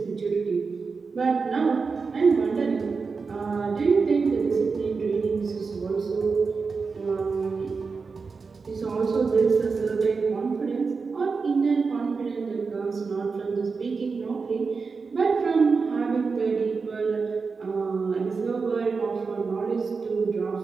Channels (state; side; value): quieter; left; 4.8 dB